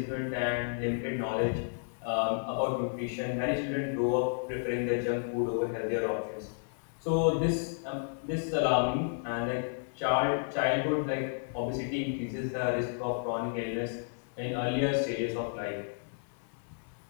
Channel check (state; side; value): silent; right; digital silence